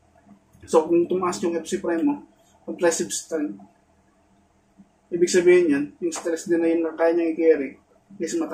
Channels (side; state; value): both; identical; correlation 1.00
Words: So, kung tumaas yung FC prime mo, compressive strength, ibig sabihin yan, yung stress din na yun na kaya niya i-carry is